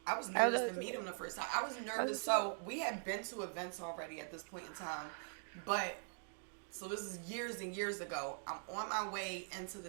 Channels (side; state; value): left; silent; digital silence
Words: I was nervous to meet him the first time. I was nervous. So we had been to events already at this point in time. But, so this is years and years ago. I'm on my way into